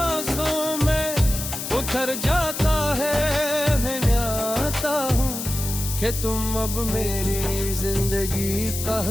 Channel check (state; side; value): noise; left; hiss, 6 dB below the sound